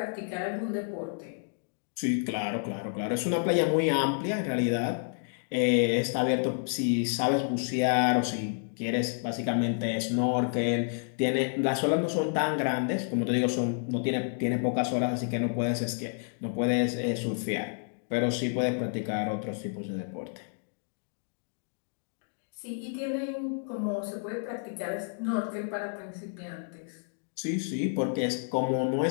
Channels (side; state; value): right; silent; digital silence